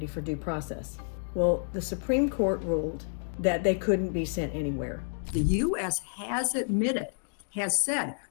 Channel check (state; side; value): silent; right; digital silence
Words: for due process. Well, the Supreme Court ruled that they couldn't be sent anywhere. The U.S. has admitted, has said,